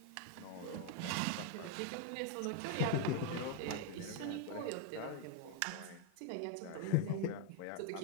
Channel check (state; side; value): different; both; correlation 0.01